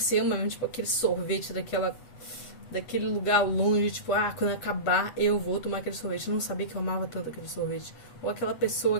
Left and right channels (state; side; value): late; right; 8.1 ms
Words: ama mesmo, tipo, aquele sorvete daquele lugar longe, tipo, quando acabar eu vou tomar aquele sorvete. Eu não sabia que eu amava tanto aquele sorvete. Ou aquela pessoa,